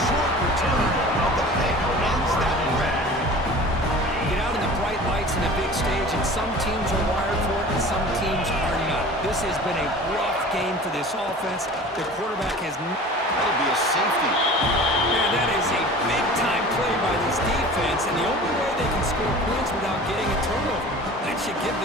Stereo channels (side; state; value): both; normal; correlation 0.41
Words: short return of the pick ends that run. Get out in the bright lights in a big stage, and some teams are wired for it and some teams are not. This has been a rough game for this offense. The quarterback has... That'll be a safety. Man, that is a big-time play by this defense, and the only way they can score points without getting a turnover. That should give